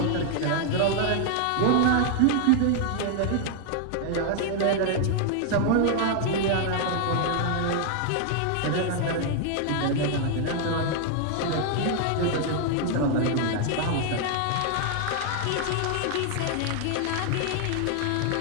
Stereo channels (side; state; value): both; different; correlation 0.00